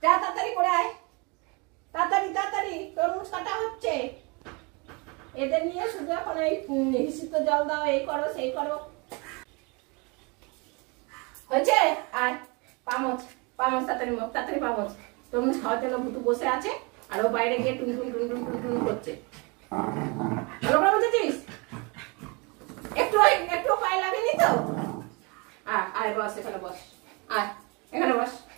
যা তাড়াতাড়ি করে আয়, তাড়াতাড়ি তাড়াতাড়ি, তরমুজ কাটা হচ্ছে। এদের নিয়ে শুধু এখন এই হিসিত জল দাও, এই করো সেই করো। হয়েছে? আর পামচ পামচ তাড়াতাড়ি মুখ, তাড়াতাড়ি পামচ। তরমুজ খাওয়ার জন্য ভুতু বসে আছে আর ও বাইরে গিয়ে টুন টুন টুন টুন টুন টুন করছে। ভালো করে বুঝেছিস? একটু একটু পায়ে লাগেনি তো? আয় বস, এখানে বস, আয় এখানে বস।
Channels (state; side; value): quieter; left; 29.8 dB